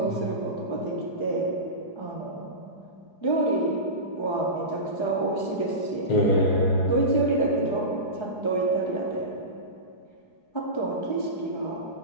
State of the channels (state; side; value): late; right; 4.8 ms